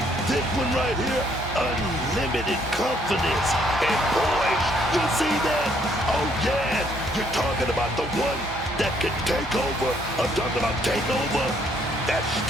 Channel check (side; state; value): both; normal; correlation 0.68